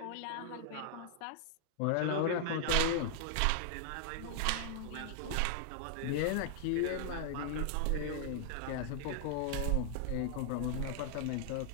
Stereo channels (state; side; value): different; both; correlation -0.01